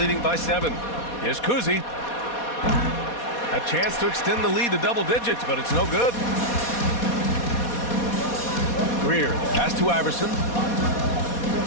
by 7. Here's Kuzi. A chance to extend the lead to double digits, but it's no good. Greer. Pass to Iverson.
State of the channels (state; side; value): late; right; 4.2 ms